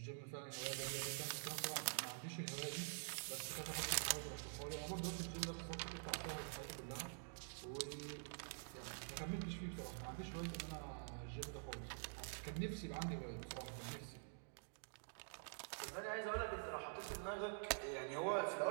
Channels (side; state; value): left; silent; digital silence